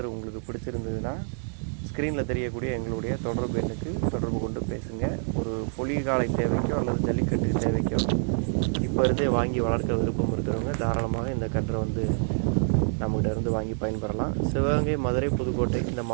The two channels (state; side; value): silent; left; 60 dB below the other